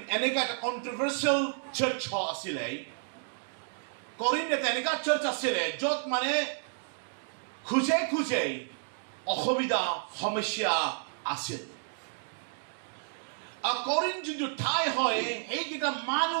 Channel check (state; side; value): silent; left; digital silence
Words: এনেকা এটা কন্ট্ৰভাৰ্চিয়েল চাৰ্চ আছিলে কৰিন্থ এটা এনেকা চাৰ্চ আছিলে য'ত মানে খুজে অসুবিধা সমস্যা আছিল According to the Thai hoy, egita